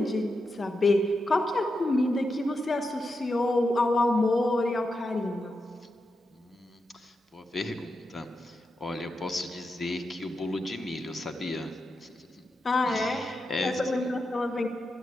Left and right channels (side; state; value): both; normal; correlation 0.87